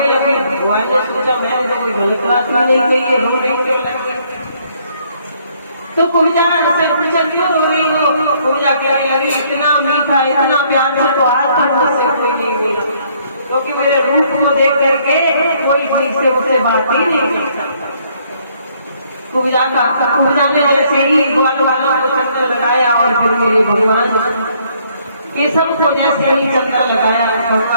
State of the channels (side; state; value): both; inverted; correlation -0.66